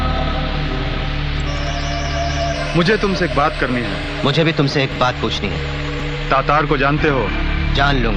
मुझे तुमसे एक बात करनी है। मुझे भी तुमसे एक बात पूछनी है। तातार को जानते हो? जान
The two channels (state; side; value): identical; both; correlation 1.00